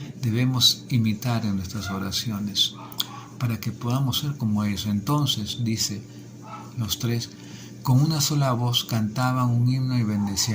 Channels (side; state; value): both; identical; correlation 1.00